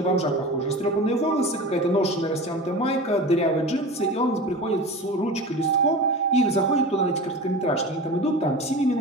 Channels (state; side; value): normal; both; correlation 0.32